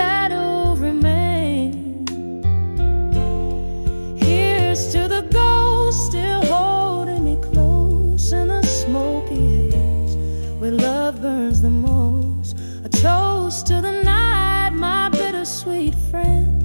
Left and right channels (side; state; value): both; inverted; correlation -1.00